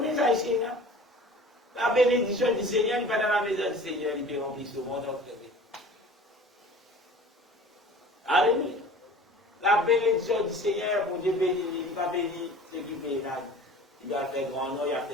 ça ici, non? La bénédiction du Seigneur, il n'est pas dans la maison du Seigneur, il peut remplir ce monde en fait. Alléluia. La bénédiction du Seigneur, pour Dieu bénir, il ne va pas bénir ceux qui payent là. Il doit faire grand nom, il a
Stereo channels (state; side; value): normal; both; correlation 0.42